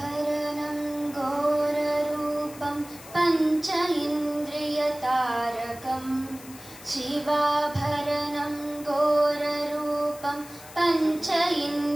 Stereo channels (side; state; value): left; noise; hiss, 18 dB below the sound